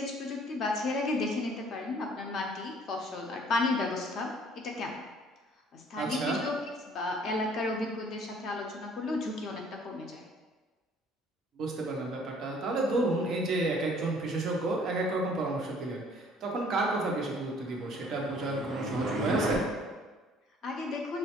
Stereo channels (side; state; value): both; normal; correlation 0.57